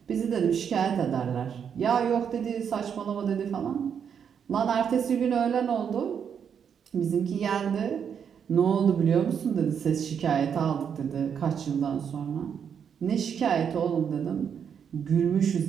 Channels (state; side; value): quieter; left; 7.6 dB